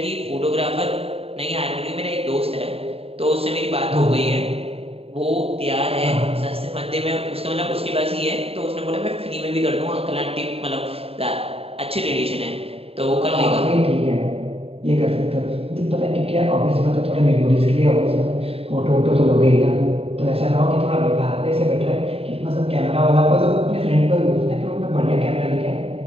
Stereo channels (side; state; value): left; late; 0.28 ms